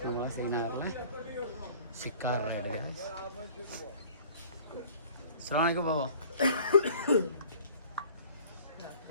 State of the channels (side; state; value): both; inverted; correlation -0.50